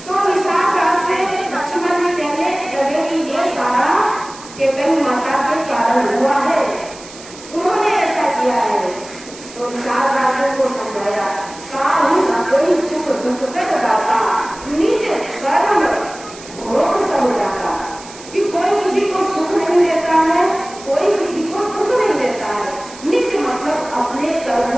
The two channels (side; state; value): right; noise; hiss, 17 dB below the sound